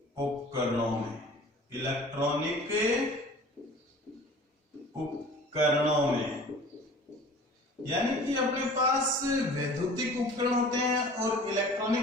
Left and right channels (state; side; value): normal; both; correlation 0.45